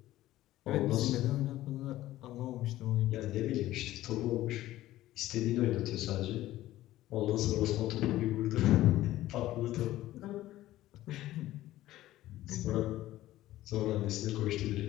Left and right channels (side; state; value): right; quieter; 15.2 dB